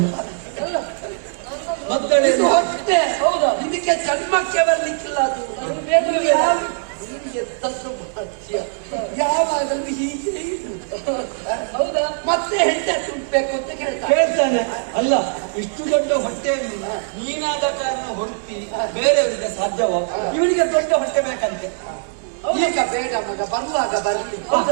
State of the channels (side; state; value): left; silent; digital silence